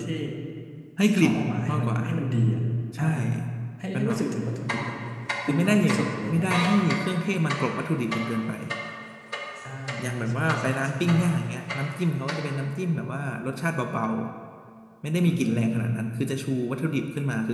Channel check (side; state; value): both; identical; correlation 1.00